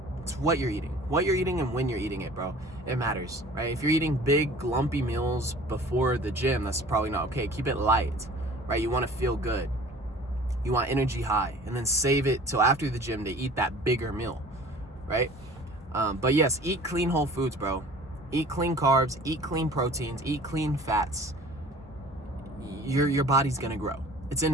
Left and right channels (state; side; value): normal; both; correlation 0.46